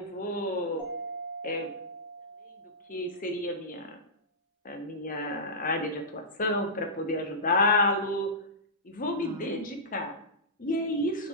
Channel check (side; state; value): both; normal; correlation -0.16